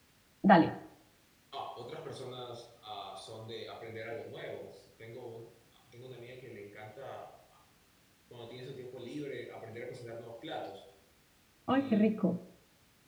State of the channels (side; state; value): both; identical; correlation 1.00